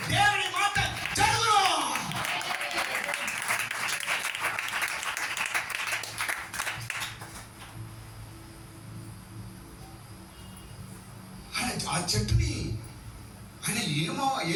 దేవుని మాట జరుగును. ఆ చెట్టుని ఆయన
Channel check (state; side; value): identical; both; correlation 1.00